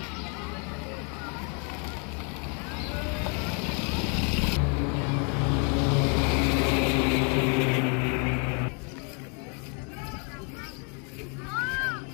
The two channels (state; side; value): quieter; right; 37.4 dB